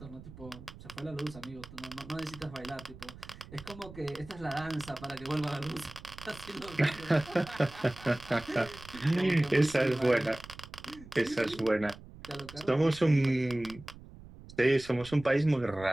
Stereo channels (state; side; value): noise; right; rumble, 17 dB below the sound